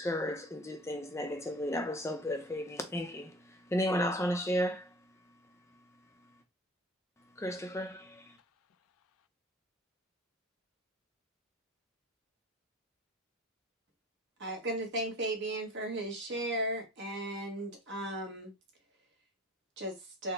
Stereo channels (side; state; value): both; normal; correlation 0.45